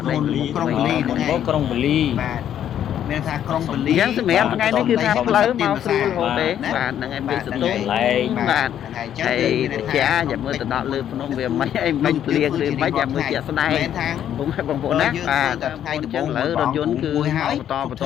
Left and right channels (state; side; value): quieter; right; 10.2 dB